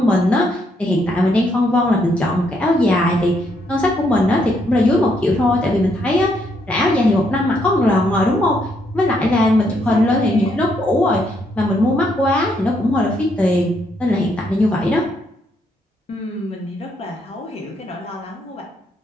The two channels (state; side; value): normal; both; correlation 0.74